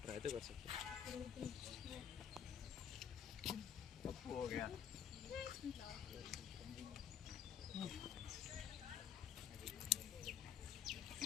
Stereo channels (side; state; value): right; quieter; 8.8 dB